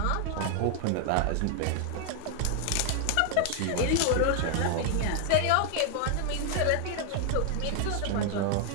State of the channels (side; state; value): both; different; correlation 0.00